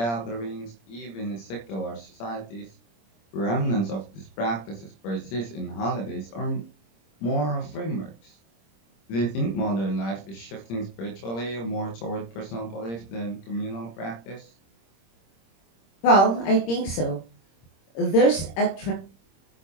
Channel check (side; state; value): right; late; 26 ms